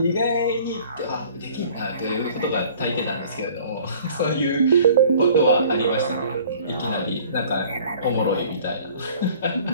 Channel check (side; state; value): both; inverted; correlation -0.51